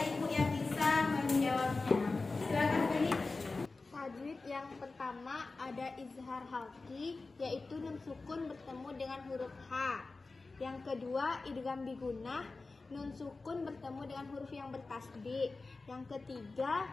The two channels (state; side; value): quieter; right; 3.7 dB